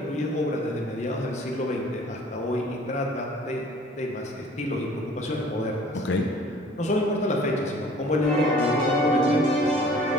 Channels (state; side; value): normal; both; correlation 0.51